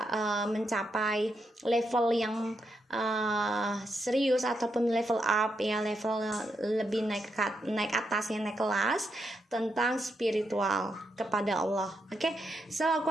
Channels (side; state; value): both; normal; correlation 0.82